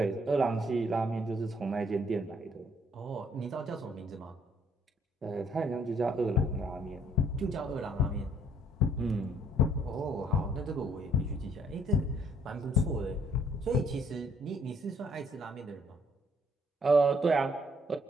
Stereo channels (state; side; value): normal; both; correlation 0.63